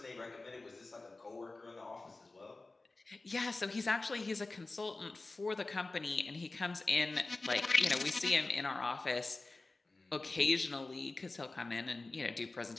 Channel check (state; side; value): quieter; right; 3.3 dB